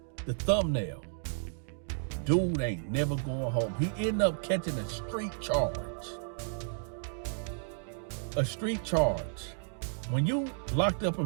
the thumbnail. Dude ain't never going home. He ended up catching a street charge. A street charge. When you locked up in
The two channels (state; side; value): silent; left; digital silence